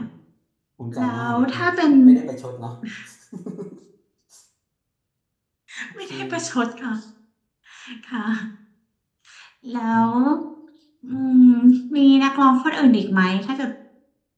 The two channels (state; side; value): identical; both; correlation 1.00